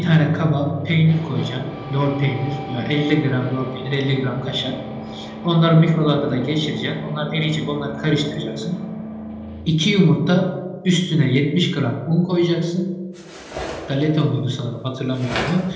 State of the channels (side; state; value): both; identical; correlation 1.00